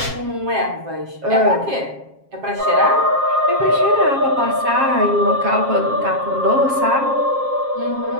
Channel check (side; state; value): left; late; 7.4 ms